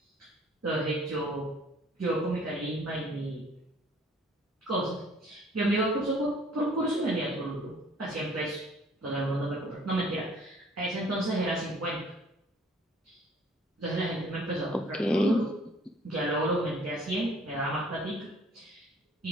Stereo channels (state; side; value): normal; both; correlation 0.56